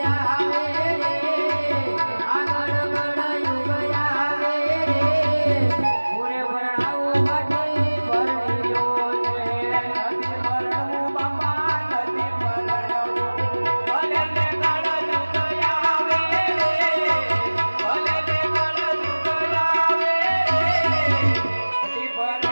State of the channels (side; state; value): both; inverted; correlation -1.00